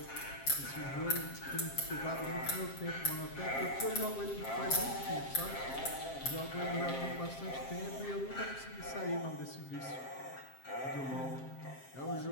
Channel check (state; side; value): late; right; 7.5 ms